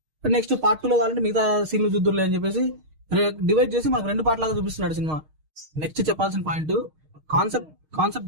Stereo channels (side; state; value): left; late; 6.4 ms